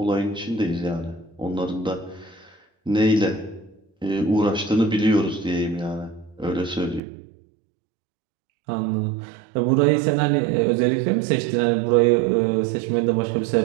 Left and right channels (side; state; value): left; drops out; at 7.0 s